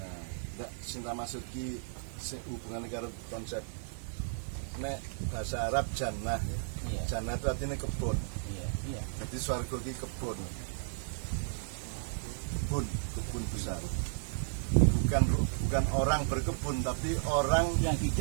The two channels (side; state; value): left; silent; 55 dB below the other